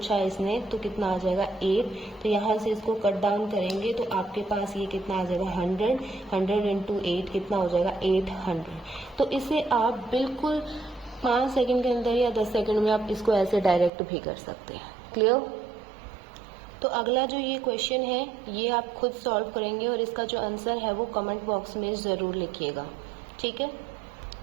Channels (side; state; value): left; drops out; at 13.9 s